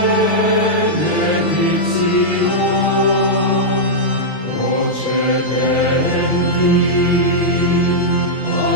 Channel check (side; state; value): right; late; 6.3 ms